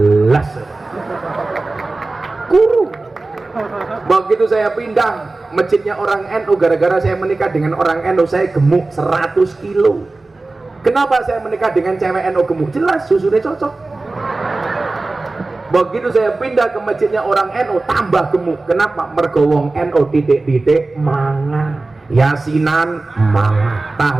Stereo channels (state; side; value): quieter; left; 3.3 dB